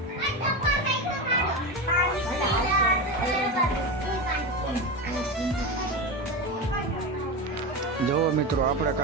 જોવો મિત્રો, આપણે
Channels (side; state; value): both; normal; correlation 0.19